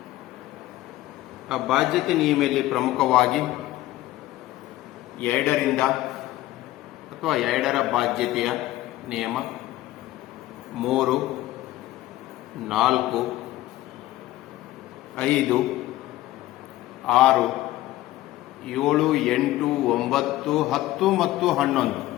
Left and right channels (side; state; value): right; quieter; 16.1 dB